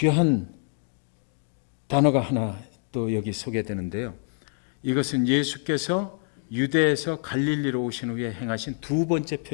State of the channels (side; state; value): right; silent; 61 dB below the other